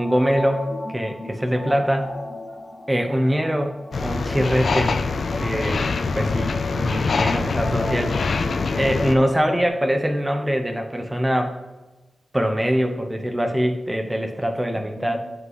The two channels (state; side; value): normal; both; correlation 0.95